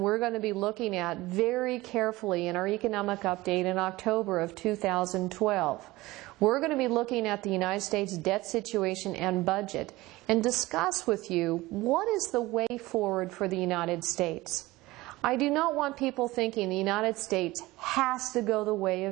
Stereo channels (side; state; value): left; quieter; 19.4 dB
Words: we're going to be looking at very carefully in our economic update in October of 2012. We're going to be looking at the United States debt situation and budget and discuss with you what is the way forward for the United States. I do not want people thinking the United States has to go the way